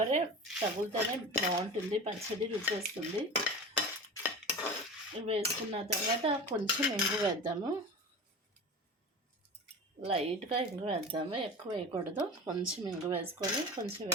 తగులుతూనే బాగుంటుంది, పచ్చడి రుచి వస్తుంది. వేసుకున్న తర్వాత కొంచెం ఇంగు వేద్దాము, లైట్గా ఇంగు వేద్దాము, ఎక్కువ వేయకూడదు. కొంచెం ఇంగు వేసుకొని కొంచెం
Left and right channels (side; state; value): both; normal; correlation 0.32